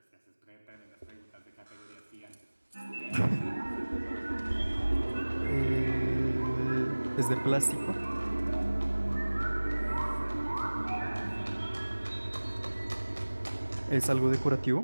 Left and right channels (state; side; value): inverted; both; correlation -1.00